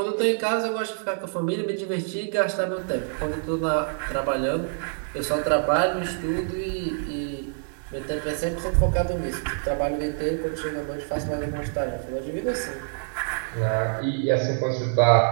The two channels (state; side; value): silent; left; digital silence